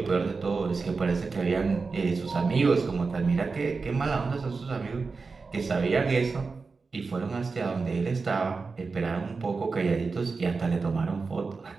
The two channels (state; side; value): quieter; left; 4.4 dB